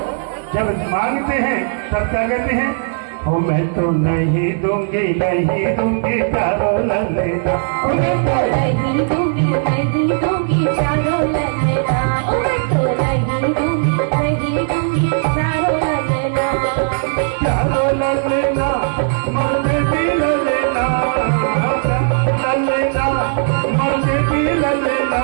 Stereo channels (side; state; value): left; silent; 63 dB below the other